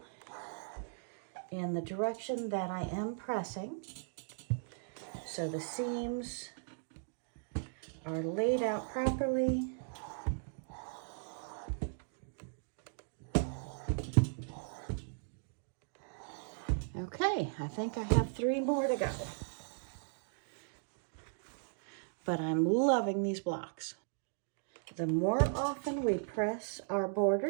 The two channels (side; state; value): left; silent; digital silence